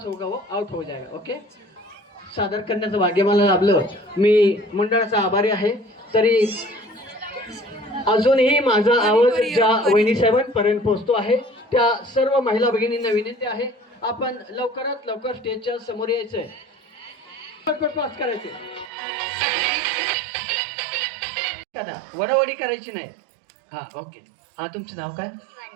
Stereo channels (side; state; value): left; drops out; at 18.9 s